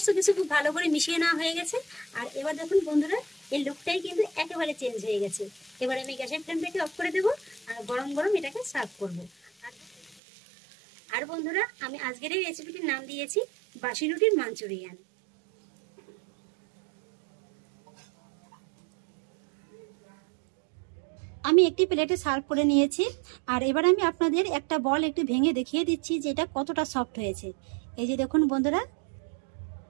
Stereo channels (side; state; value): left; drops out; at 10.2 s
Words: কিছু খুব ভালো করে মিশিয়ে নেওয়া হয়ে গেছে। আর এবার দেখুন বন্ধুরা, এই লুকটাই কিন্তু একেবারে চেঞ্জ হয়ে গেছে। এবার আমি গ্যাসের ফ্লেমটাকে অফ করে দেবো আর গরম গরম এটাকে সার্ভ করব। আর বন্ধুরা, আমি আজকের এই রেসিপিটির নাম দিয়েছি বাসি রুটির মাঞ্চুরিয়ান। আমি একটি প্লেটে সার্ভ করে নিয়েছি। আর এবার আমি আপনাদের একটা বল একটু ভেঙে দেখিয়ে দিচ্ছি যে এটা কতটা সফট হয়েছে। এই যে দেখুন বন্ধুরা,